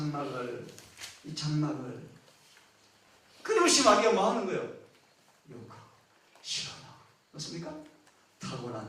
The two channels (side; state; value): both; identical; correlation 1.00